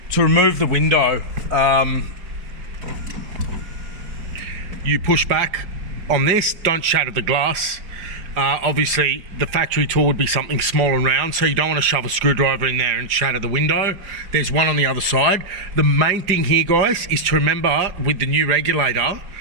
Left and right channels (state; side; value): late; left; 4.9 ms